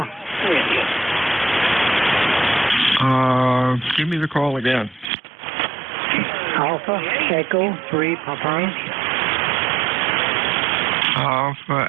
Give me the call again. Alpha Echo 3 Papa. Alpha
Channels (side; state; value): left; drops out; at 5.1 s